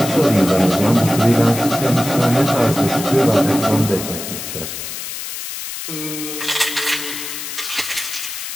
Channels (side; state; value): left; noise; hiss, 7 dB below the sound